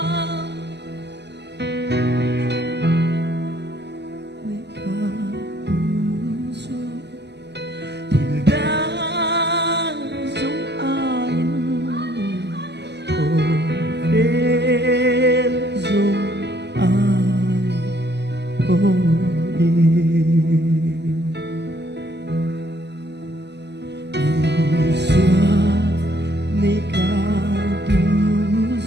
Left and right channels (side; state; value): left; late; 0.50 ms